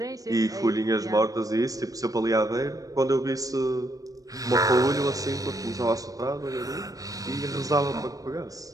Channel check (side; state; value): left; late; 0.17 ms